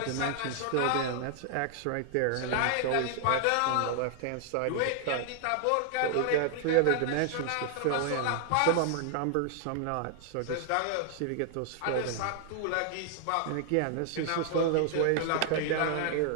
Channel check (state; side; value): different; both; correlation 0.00